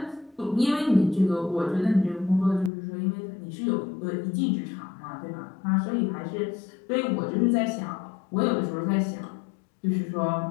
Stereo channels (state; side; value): drops out; right; at 2.7 s